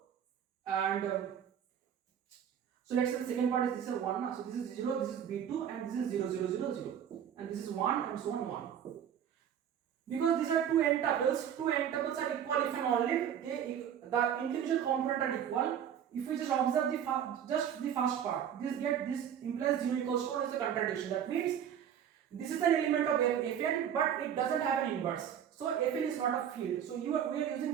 and so let's say the second part is this is 1. So this is 0, this is B2, and this is 0, 0, 0, 0, and this is 1, and so on 1. Because these are two n tuples are equal if and only the individual component are equal. If we just observe the first part, this implies 0 equals to 1 is a contradiction. That means this is an element of Fn, but it doesn't have an inverse. So Fn is not a field. So we are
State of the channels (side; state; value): left; quieter; 9.2 dB